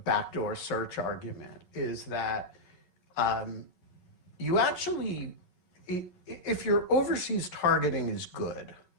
search argument is that you actually, if your overseas targeting is good,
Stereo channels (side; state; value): right; late; 11 ms